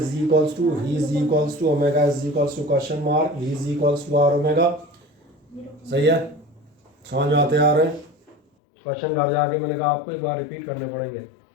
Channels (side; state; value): right; drops out; at 8.4 s